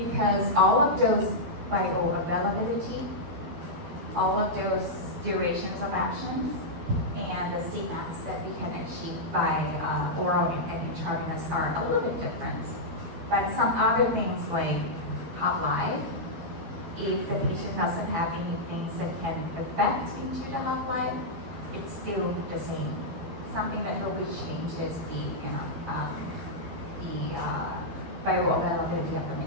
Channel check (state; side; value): late; left; 12 ms